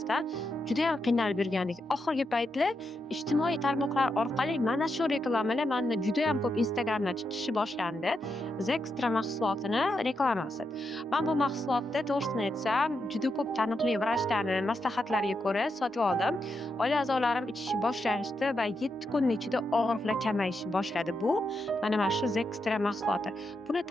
judayam qiynalib yurgandik. Oxirgi paytlar ijtimoiy tarmoqlar orqali mana shu reklamalar manda judayam ko'p Instagramda chiqishi boshlandi. Zextra mahsulotini reklamasi. Men bu mahsulotni to'g'risini aytsam, juda ko'p taniqli vrachlarni maslahatlariga ko'ra sotib oldim. Oila a'zolarim ichishni boshlashdi va 7 kun ichida og'riqlar kamayishni boshladi. Bu mana shu Zextra mahsuloti. Buni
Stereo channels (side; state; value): both; normal; correlation 0.84